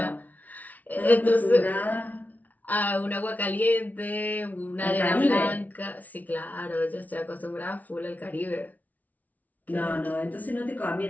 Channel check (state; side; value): late; right; 0.075 ms